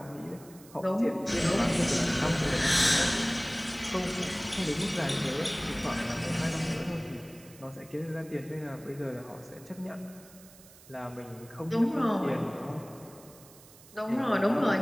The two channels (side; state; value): right; noise; hiss, 22 dB below the sound